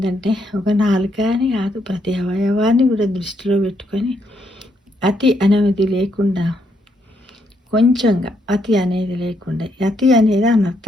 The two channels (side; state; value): both; normal; correlation 0.75